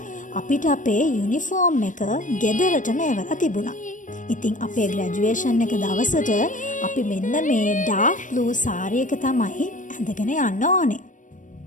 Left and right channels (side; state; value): right; late; 0.37 ms